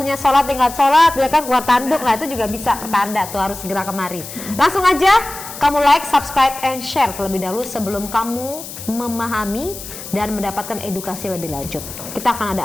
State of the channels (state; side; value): noise; left; hiss, 12 dB below the sound